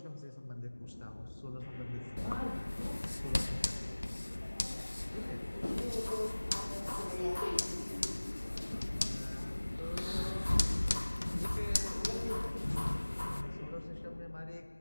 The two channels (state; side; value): inverted; both; correlation -1.00